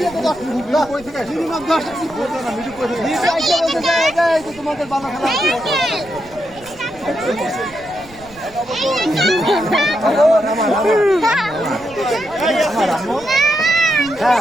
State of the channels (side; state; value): right; noise; rumble, 23 dB below the sound